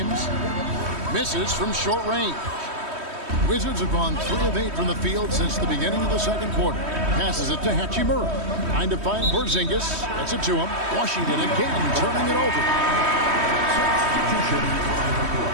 Misses from short range. Wizards have gone 3 of 8 from the field since the beginning of the second quarter. Passes it to Hachimura. Trying to find Porzingis. Gets it to him. Washington again turning it over.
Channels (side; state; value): left; late; 3.1 ms